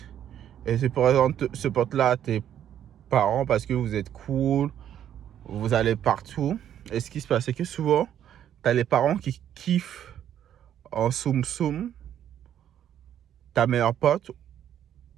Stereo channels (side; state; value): left; quieter; 10.3 dB